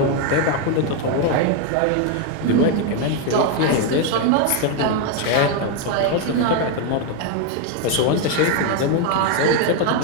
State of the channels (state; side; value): different; both; correlation 0.01